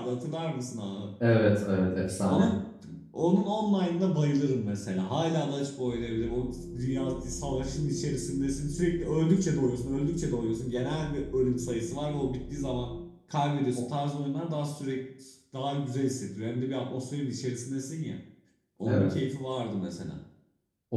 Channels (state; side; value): identical; both; correlation 1.00